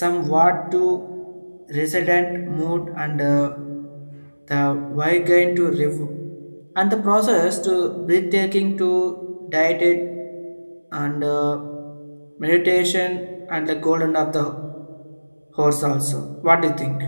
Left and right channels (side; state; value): both; inverted; correlation -1.00